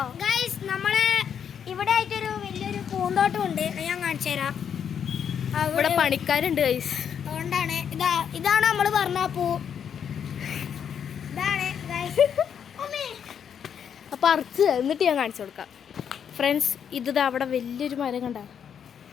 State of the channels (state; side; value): quieter; right; 8.0 dB